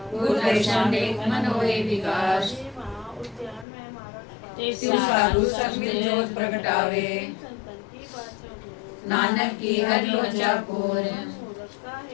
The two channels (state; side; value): drops out; right; at 3.7 s